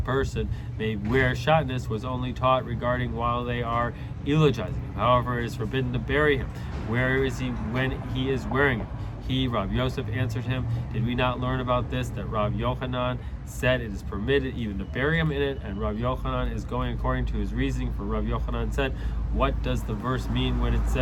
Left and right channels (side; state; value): both; identical; correlation 1.00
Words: person may wear shatnez was only taught regarding while they are eulogizing him. However, it is forbidden to bury him. Where is he when he is wearing it? He, Rav Yosef, answered him, did we not learn about this, that Rav Yochanan said it is permitted even to bury him in it, and Rav Yochanan is going according to his reasoning, for Rav Yochanan said, what does the verse mean when it